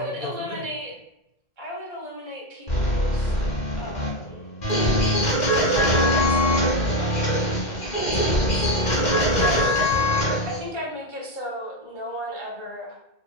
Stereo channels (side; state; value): right; late; 2.1 ms